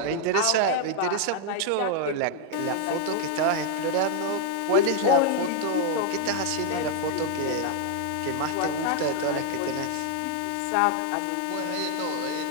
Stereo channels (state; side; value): different; both; correlation 0.00